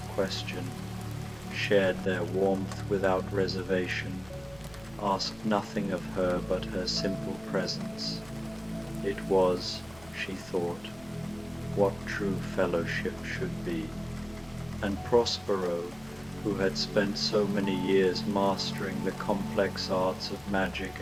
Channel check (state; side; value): noise; left; rumble, 23 dB below the sound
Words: question, shared their warmth without reservation, asked nothing of her but her simple presence. It was, she thought, what true fellowship should be. And Prospero, who had spent so many years mastering the complex arts of magic